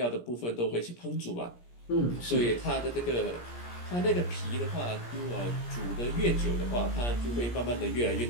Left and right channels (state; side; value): late; right; 17 ms